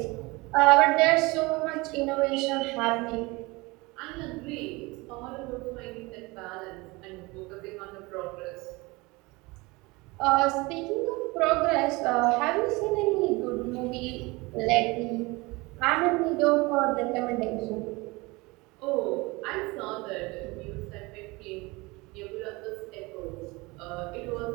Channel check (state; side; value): quieter; left; 24.0 dB